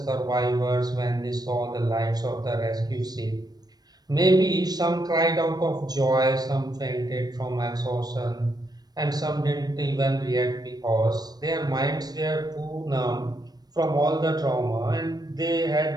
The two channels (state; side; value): late; left; 0.19 ms